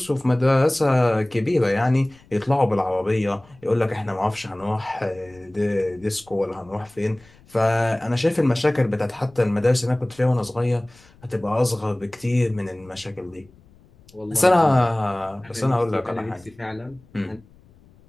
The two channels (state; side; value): noise; left; rumble, 28 dB below the sound